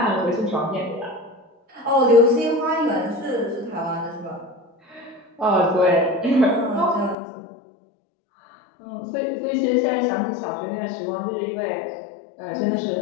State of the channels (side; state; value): right; drops out; at 7.2 s